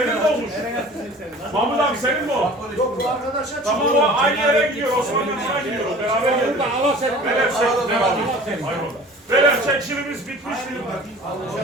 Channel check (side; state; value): both; normal; correlation 0.44